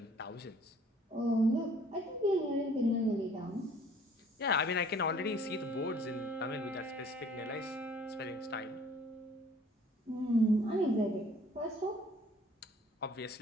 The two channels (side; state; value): both; normal; correlation 0.55